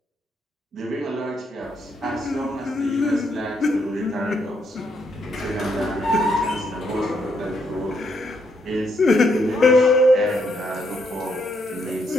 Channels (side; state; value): both; normal; correlation 0.75